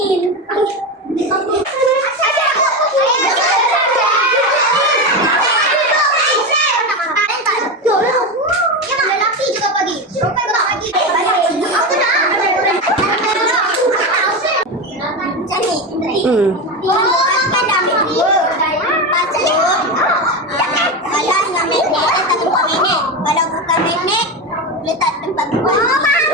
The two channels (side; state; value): both; normal; correlation 0.17